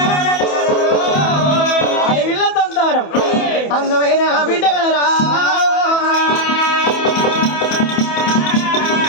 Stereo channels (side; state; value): right; late; 27 ms